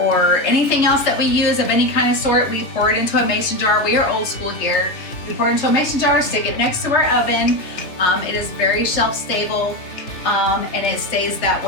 anything else that we use of any kind of sort. We pour it into a mason jar. We are old school here. We pour it into a mason jar, stick it next to our oven. It is very shelf stable, and it stays that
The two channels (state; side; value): late; right; 3.5 ms